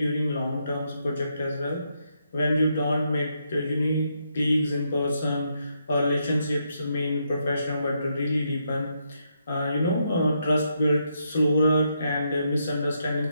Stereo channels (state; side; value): inverted; both; correlation -0.79